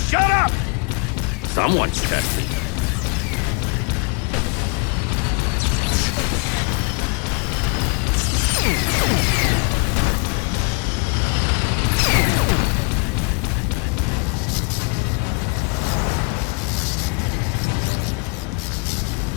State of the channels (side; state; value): right; quieter; 33.8 dB